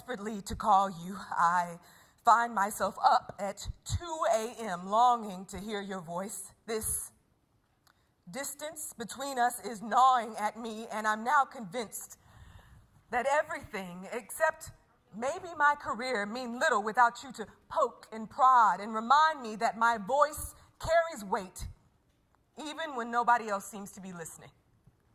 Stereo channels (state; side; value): identical; both; correlation 1.00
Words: to call you. I find myself up at 2 a.m. longing to hear your voice. This distance between us is gnawing at me, and I'm now convinced that everything except maybe my career mean little without you to poke and prod and remind me that my voice carries weight even when nobody else seems to be listening.